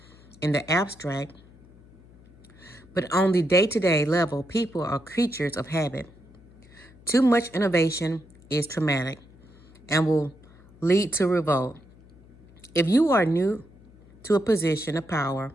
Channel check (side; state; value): left; noise; hum, 25 dB below the sound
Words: in the abstract, but on the day-to-day level, people are creatures of habit. Too much innovation is traumatic and will lead to revolt. If you are new to a position of power